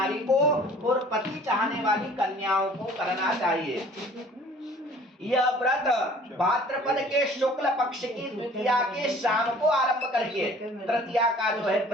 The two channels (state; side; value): normal; both; correlation 0.51